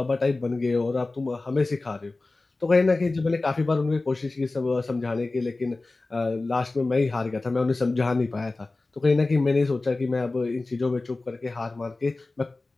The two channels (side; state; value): right; quieter; 3.3 dB